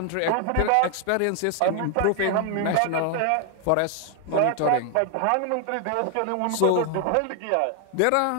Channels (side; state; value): both; different; correlation 0.00